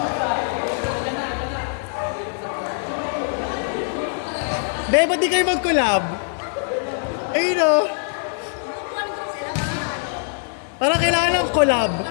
Be, ba't di kayo mag-collab? Ayun o. Parang kailangan ng collab.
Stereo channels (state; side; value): silent; right; 64 dB below the other